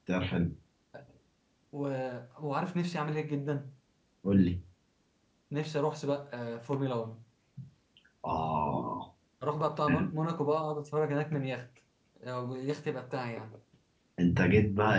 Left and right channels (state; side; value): identical; both; correlation 1.00